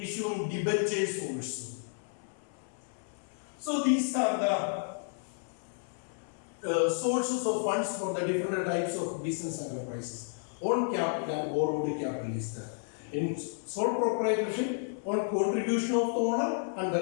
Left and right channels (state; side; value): silent; right; 57 dB below the other